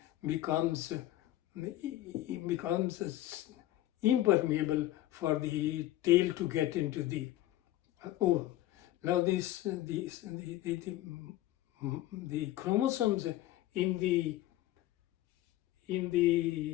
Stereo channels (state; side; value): quieter; right; 14.7 dB